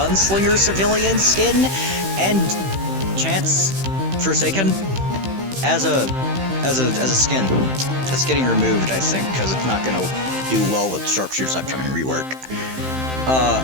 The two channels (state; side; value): late; left; 15 ms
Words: civilian skin, and Chance Forsaken as a skin. That's getting removed, I think, because it's not gonna do well with Sharpshooter's upcoming rework.